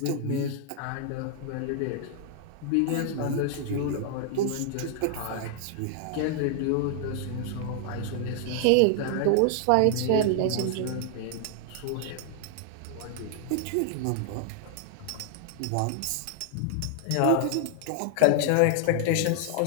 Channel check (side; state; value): both; different; correlation 0.00